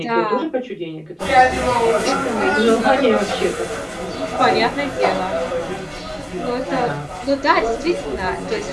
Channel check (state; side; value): identical; both; correlation 1.00